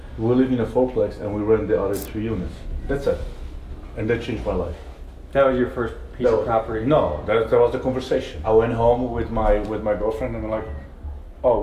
we live in a fourplex and we rent the other 3 units. That's it. And that changed my life. That was your first piece of property? No, that was the conversation. I went home with my girlfriend and we're like,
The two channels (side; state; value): both; identical; correlation 1.00